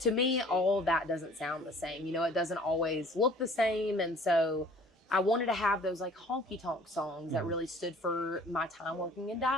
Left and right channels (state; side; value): normal; both; correlation 0.51